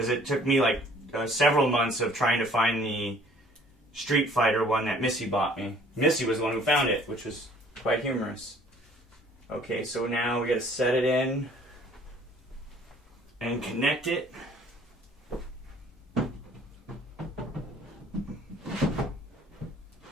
it took me like several months of trying to find the Street Fighter one that Missy bought me. Missy was the one who found it, which was quite humorous. Okay, so now we gotta set it in and connect it.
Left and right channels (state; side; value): normal; both; correlation 0.55